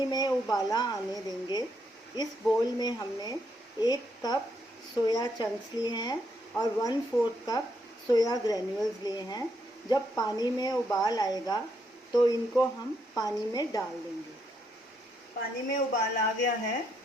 में उबाला आने देंगे। इस बोल में हमने 1 कप सोया चंक्स लिए हैं और 1/4 कप सोया ग्रैन्यूल्स लिए हैं। जब पानी में उबाल आएगा तो इनको हम पानी में डाल देंगे। पानी में उबाल आ गया है।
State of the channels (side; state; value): both; normal; correlation 0.76